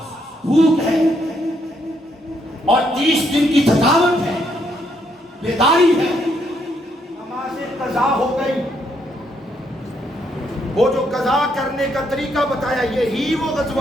بھوک ہے, اور 30 دن کی تھکاوٹ ہے, بیداری ہے. نماز قضا ہو گئی. وہ جو قضا کرنے کا طریقہ بتایا یہی وہ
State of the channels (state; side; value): normal; both; correlation 0.74